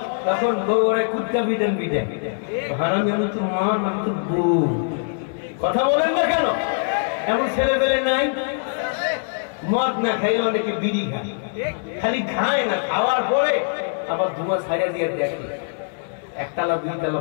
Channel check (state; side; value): silent; right; digital silence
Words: তখন বউরে কুত্তা বিদেন বিদেন, হারামি আমি তো মা, আমি তো বউ। কথা বলেন না কেন? এমন ছেলে পেলে নাই? মদ না খাইলে অনেকে বিড়ি খায়, খালি খায় না, খাওয়ার পরে আবার ধোঁয়া ছাইড়া দিয়ে দেখে একতলা 2 তলা